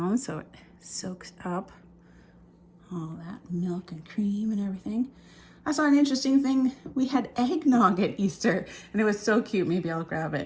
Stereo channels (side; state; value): both; identical; correlation 1.00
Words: so it soaks up all that milk and cream and everything. I saw an interesting thing. We had eggnog at Easter and it was so cute. Maybe I'll grab